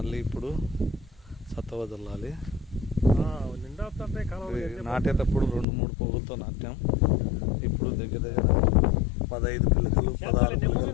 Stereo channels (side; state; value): right; drops out; at 5.7 s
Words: ఇప్పుడు సత్త వదలాలి. నాటేటప్పుడు 2-3 పువ్వులతో నాటాం. ఇప్పుడు దగ్గర 15 పిల్లకలు 16 పిల్లకలు